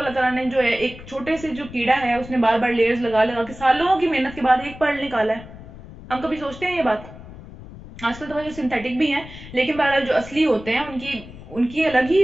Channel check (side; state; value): left; noise; rumble, 16 dB below the sound